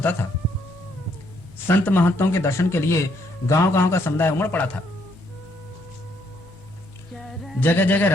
था। संत महंतों के दर्शन के लिए गांव-गांव का समुदाय उमड़ पड़ा था। जगह जगह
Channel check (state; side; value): normal; both; correlation 0.71